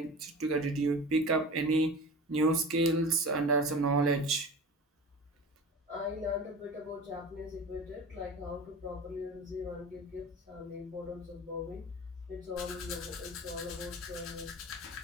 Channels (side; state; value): both; normal; correlation 0.35